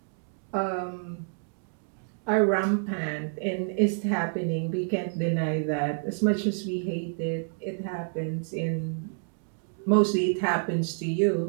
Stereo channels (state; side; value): silent; left; digital silence